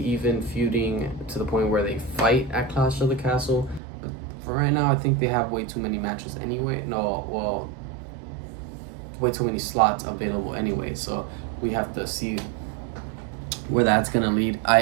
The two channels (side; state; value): left; drops out; at 3.8 s